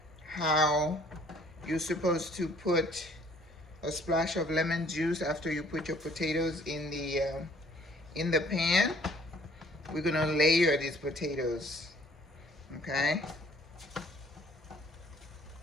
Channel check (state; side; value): normal; both; correlation 0.58